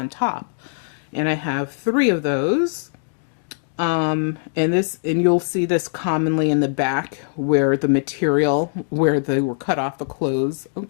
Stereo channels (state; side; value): silent; right; digital silence